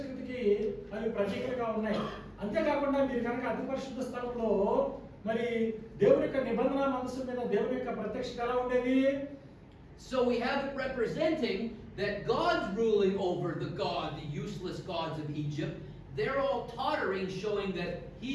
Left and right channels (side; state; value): both; identical; correlation 1.00